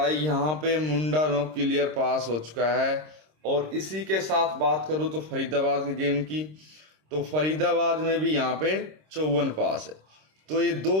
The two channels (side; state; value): left; late; 26 ms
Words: यहाँ पे मुंडा नो क्लियर पास हो चुका है। और इसी के साथ बात करूँ तो फरीदाबाद के गेम की, तो फरीदाबाद में भी यहाँ पे 54 पास है। तो ये